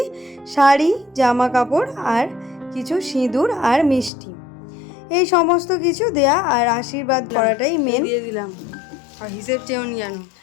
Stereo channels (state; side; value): drops out; right; at 4.1 s